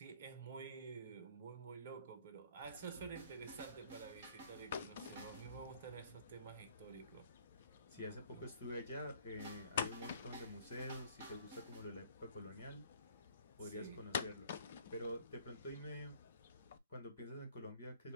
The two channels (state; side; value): inverted; both; correlation -0.57